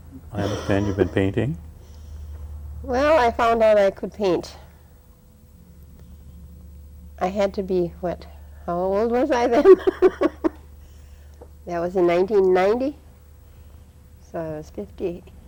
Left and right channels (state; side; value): identical; both; correlation 1.00